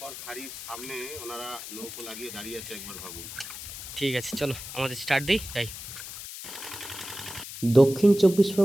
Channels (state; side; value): noise; left; hiss, 10 dB below the sound